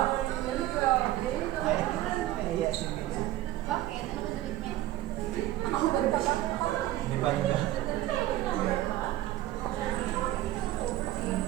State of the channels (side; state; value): left; quieter; 14.9 dB